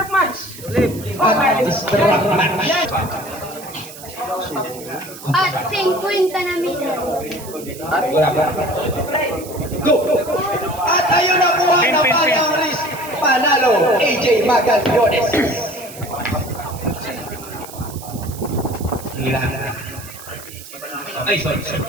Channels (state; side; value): noise; right; hiss, 15 dB below the sound